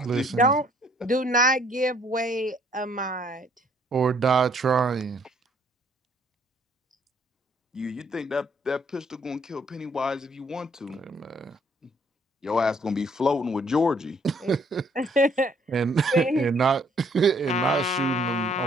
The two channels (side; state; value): both; normal; correlation 0.64